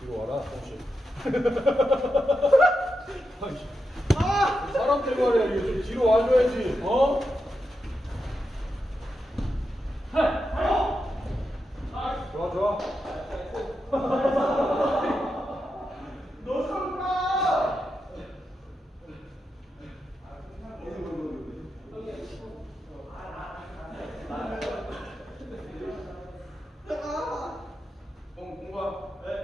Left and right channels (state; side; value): normal; both; correlation 0.87